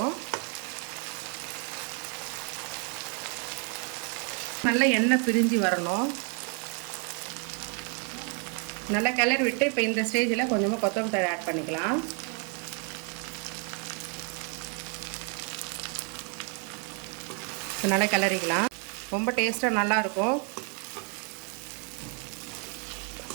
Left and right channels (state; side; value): quieter; left; 38.6 dB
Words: நல்லா எண்ணெய் பிரிஞ்சு வரணும். நல்லா கிளறி விட்டு இப்போ இந்த ஸ்டேஜில் கொஞ்சமாக கொத்தமல்லி தழை ஆட் பண்ணிக்கலாம். நல்லா கிளறிக்கலாம். ரொம்ப டேஸ்ட்டாக நல்லாயிருக்கும்.